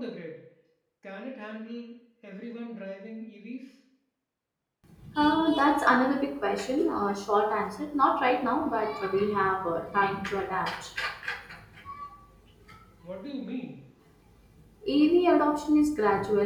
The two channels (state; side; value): identical; both; correlation 1.00